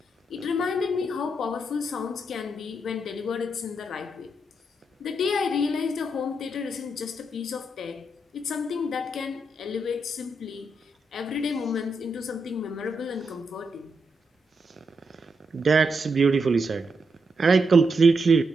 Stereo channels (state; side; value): normal; both; correlation 0.82